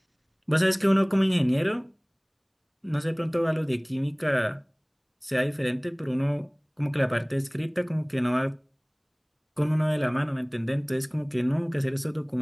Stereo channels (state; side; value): identical; both; correlation 1.00